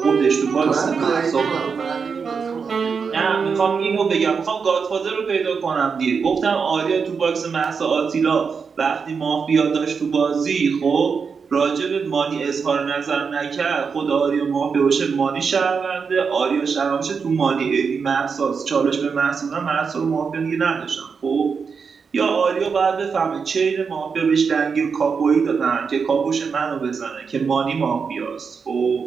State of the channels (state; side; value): quieter; left; 5.7 dB